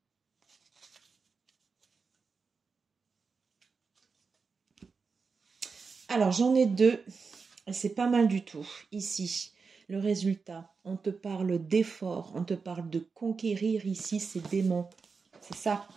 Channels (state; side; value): quieter; left; 4.9 dB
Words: Alors, j'en ai deux et c'est pas mal du tout. Ici, le résultat, on te parle d'effort, on te parle de conquérir ici ces démons. C'est ça.